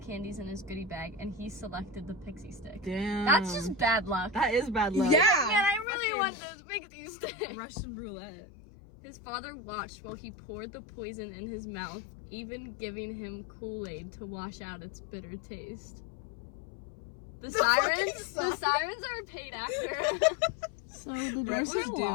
in his goodie bag, and he selected the pixie stick. Damn. That's just bad luck. That is bad luck. Man, Yeah. I really Fucking- want this pixie stick. Russian roulette. His father watched while he poured the poison in his mouth, even giving him Kool-Aid to wash out its bitter taste. The fucking sirens are a paid actor. So the Rent doors was are due.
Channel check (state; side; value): drops out; right; at 5.9 s